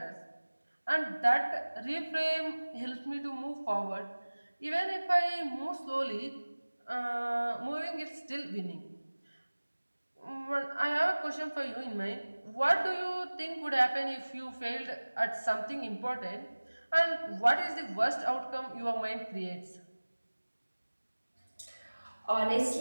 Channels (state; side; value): inverted; both; correlation -1.00